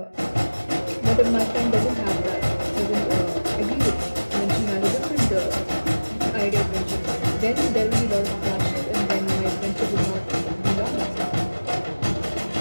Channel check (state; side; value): inverted; both; correlation -1.00